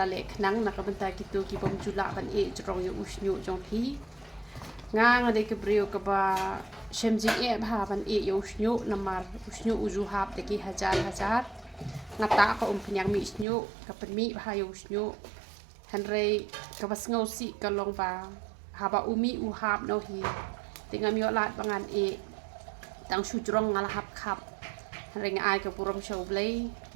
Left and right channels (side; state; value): left; drops out; at 13.5 s